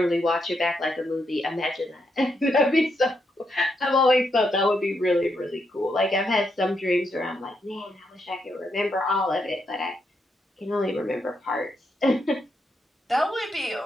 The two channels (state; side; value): normal; both; correlation 0.80